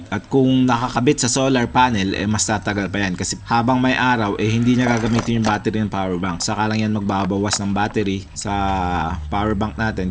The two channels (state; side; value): identical; both; correlation 1.00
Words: At kung nakakabit sa solar panel, mas tatagal pa yan. Kasi habang may araw, hindi niya gagamitin yung battery ng power bank. Saka lang yan magbabawas ng battery sa power bank